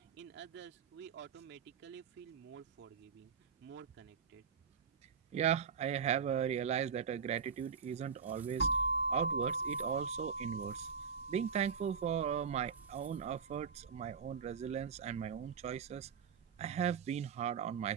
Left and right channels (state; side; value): quieter; left; 6.3 dB